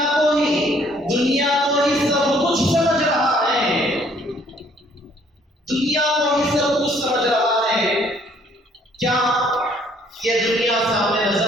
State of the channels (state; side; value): normal; both; correlation 0.62